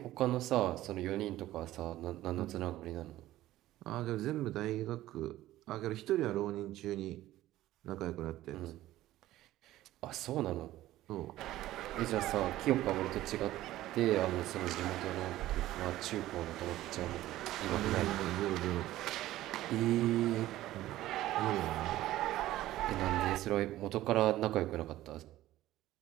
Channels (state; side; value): quieter; left; 15.1 dB